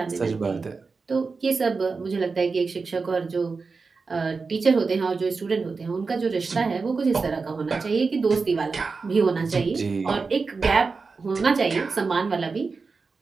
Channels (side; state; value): left; quieter; 4.5 dB